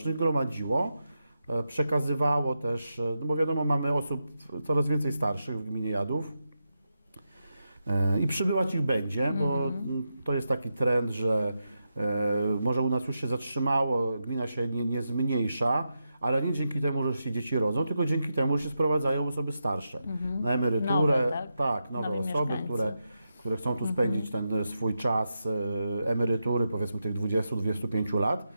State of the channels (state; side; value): inverted; both; correlation -0.88